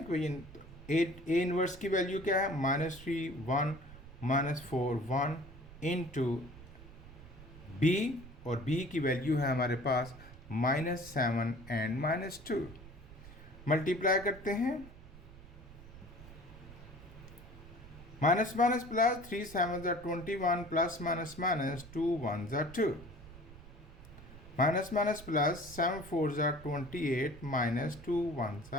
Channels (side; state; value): right; noise; rumble, 17 dB below the sound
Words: ए इनवर्स की वैल्यू क्या है, -3 1 -4 1 इंटू बी, और बी की वैल्यू है हमारे पास -7 एंड -2। मल्टीप्लाई करते हैं, minus minus plus 3 7 21 plus minus minus 2 1 2, minus minus plus 7 4 28 minus 2